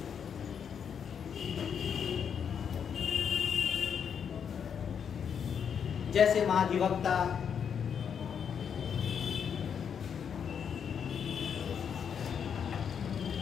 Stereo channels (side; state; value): right; quieter; 7.5 dB